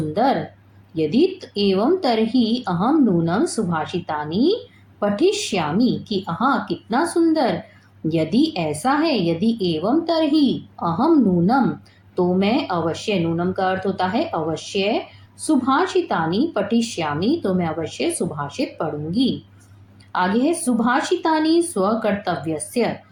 यदि एवं तरही अहम नूनम सुभाषितानि पठिष्यामि। कि हाँ कितना सुंदर, यदि ऐसा है, यदि एवं तरही अहम नूनम, तो मैं अवश्य, नूनम का अर्थ होता है अवश्य, सुभाषितानि पठिष्यामि, तो मैं अवश्य सुभाषित पढ़ूंगी। आगे है सुभाषितानि स्वकर्तव्यस्य।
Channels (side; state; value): both; identical; correlation 1.00